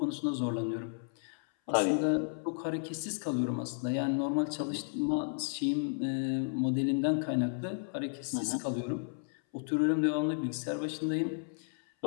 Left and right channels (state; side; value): silent; right; 56 dB below the other